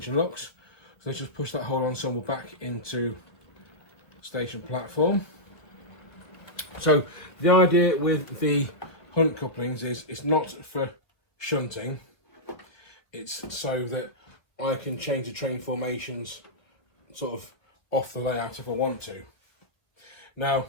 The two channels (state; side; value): late; right; 1.5 ms